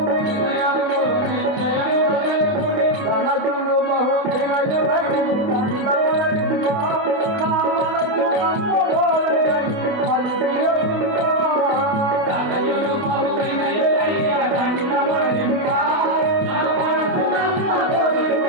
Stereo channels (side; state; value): left; late; 28 ms